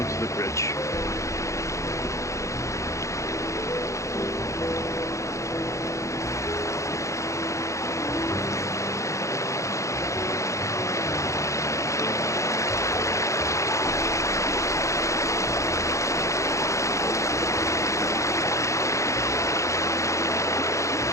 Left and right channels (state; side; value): late; right; 0.15 ms